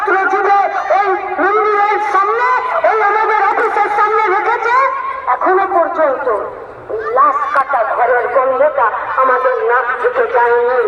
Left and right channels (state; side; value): identical; both; correlation 1.00